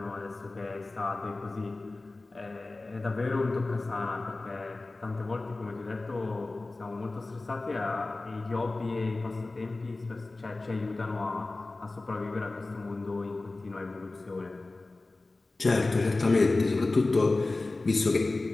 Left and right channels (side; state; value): right; quieter; 3.2 dB